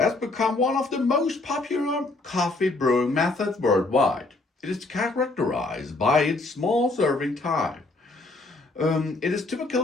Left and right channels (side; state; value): right; quieter; 3.1 dB